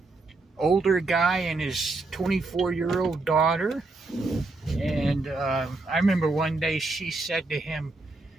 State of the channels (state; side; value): quieter; left; 3.4 dB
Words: older guy and his 24-year-old daughter. And I remember one day she said to him,